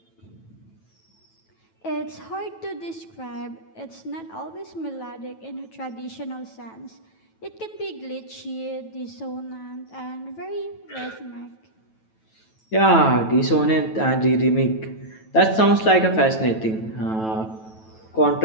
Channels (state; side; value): late; right; 9.1 ms